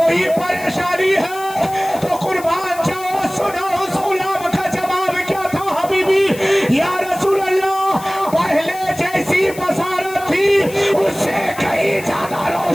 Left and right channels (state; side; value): noise; left; hiss, 16 dB below the sound